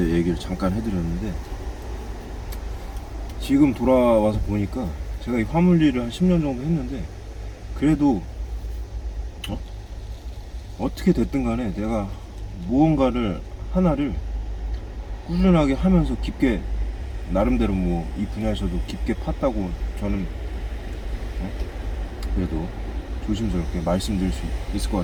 얘기를 잠깐 해드렸는데, 지금 돌아와서 보니까 제가 이 화물 일을 한 10년 정도 했는데, 그래도 어떻게 됐든 간에 내가 무언가를 하나를 꾸준하게 하면서 깊게, 나름대로 뭐 이 분야에서도 깊게 팠다고 저는 그래도 조심스럽게 말씀드릴 수 있을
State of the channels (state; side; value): identical; both; correlation 1.00